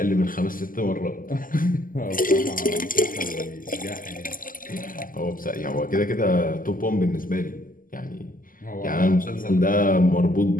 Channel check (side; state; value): right; late; 0.41 ms